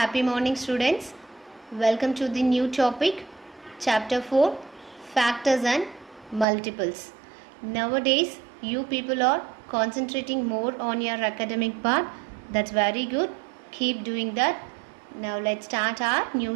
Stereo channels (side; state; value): left; drops out; at 6.5 s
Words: morning, students. Welcome to the new topic, chapter 4, factors and multiples. Nowadays, you people are concentrating more on your academic part. That's very good. Keep doing that. Now, let's start our